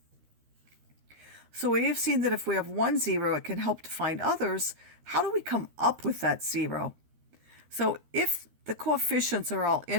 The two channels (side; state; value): left; late; 13 ms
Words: So we have seen that if we have one zero, it can help to find others. How do we come up with that zero? So if the coefficients are all